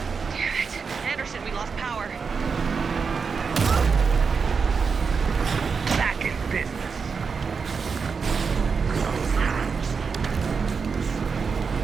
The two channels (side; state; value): left; quieter; 5.4 dB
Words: Damn it. Anderson, we lost power. Back in business.